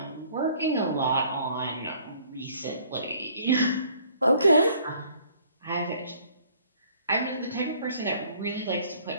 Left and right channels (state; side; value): inverted; both; correlation -0.58